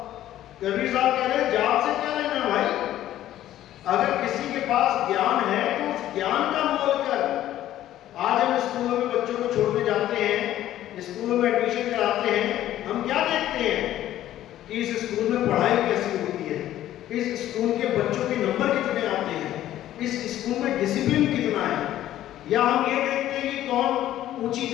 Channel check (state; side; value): quieter; right; 13.0 dB